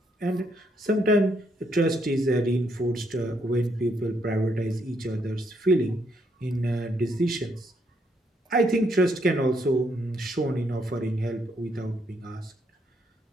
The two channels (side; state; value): both; normal; correlation 0.74